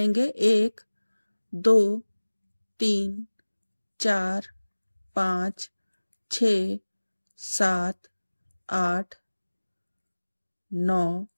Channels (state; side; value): inverted; both; correlation -1.00